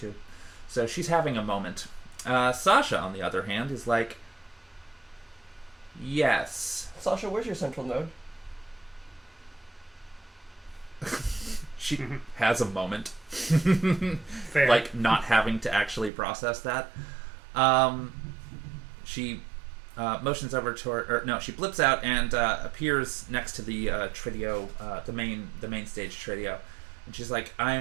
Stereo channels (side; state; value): left; drops out; at 16.1 s